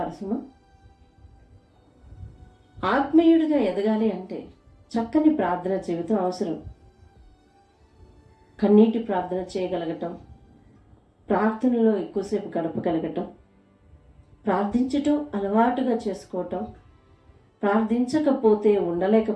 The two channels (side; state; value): both; identical; correlation 1.00